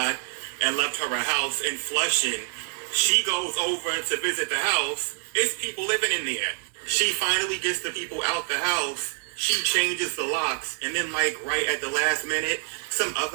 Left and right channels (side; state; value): left; silent; digital silence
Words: and left her a house in Flushing. She goes over to visit the house. It's people living in there. She finally gets the people out the house. She changes the locks, and then like right at the last minute, some